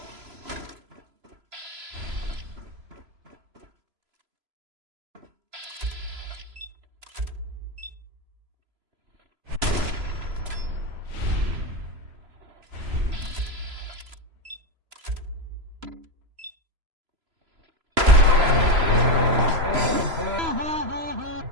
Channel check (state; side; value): late; left; 3.0 ms